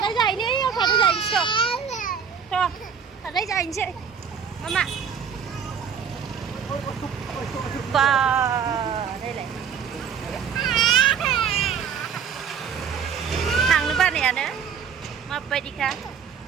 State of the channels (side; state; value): left; quieter; 7.2 dB